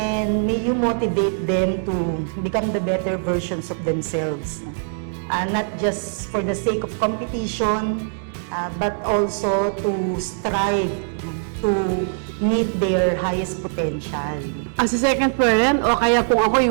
may you motivate them to become the better versions of themselves. Not just for the sake of competition, but also to strive to meet their highest potential. As a second parent, o kaya kung ako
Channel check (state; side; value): silent; left; digital silence